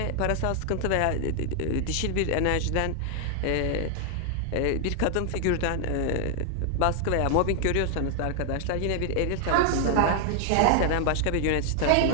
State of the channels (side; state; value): both; different; correlation 0.00